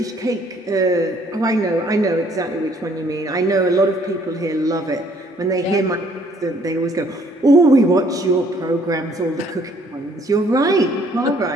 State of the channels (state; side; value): normal; both; correlation 0.62